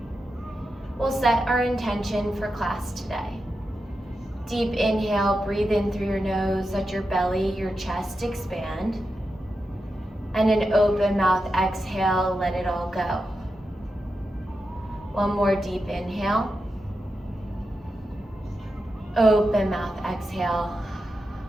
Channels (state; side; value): normal; both; correlation 0.89